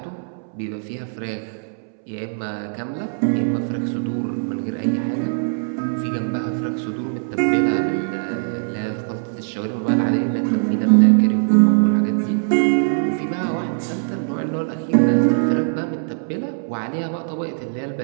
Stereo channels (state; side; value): silent; left; 65 dB below the other